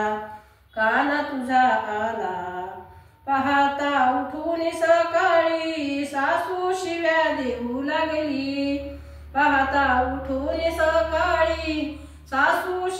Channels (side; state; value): both; identical; correlation 1.00